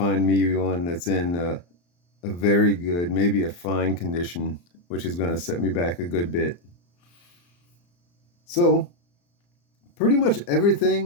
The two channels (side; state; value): right; late; 34 ms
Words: me one that's in a very good, maybe a fine condition, which is going to set me back a good bit. So pretty much